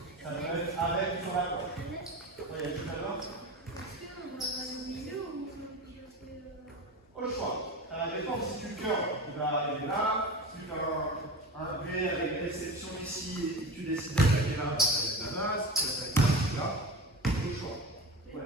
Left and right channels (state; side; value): normal; both; correlation 0.28